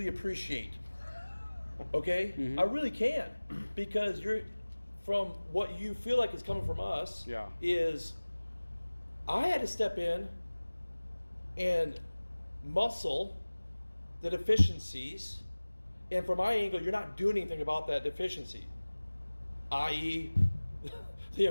appreciate. Okay, I really can, because you're from what you feel like is coming from us. Yeah. Is I had to step in and muscle the deficiencies, and from my angle, you're not doing anything about that deficiency, i.e., the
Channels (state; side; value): inverted; both; correlation -1.00